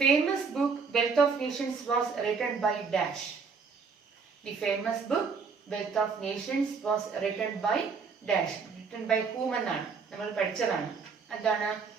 famous book Wealth of Nations was written by dash. The famous book Wealth of Nations was written by dash. Written by whom എന്നാണ് നമ്മൾ പഠിച്ചതാണ്. എന്താണ്?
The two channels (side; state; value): left; quieter; 5.3 dB